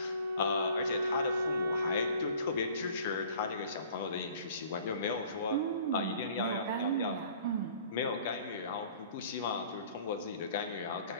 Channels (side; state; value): both; inverted; correlation -0.51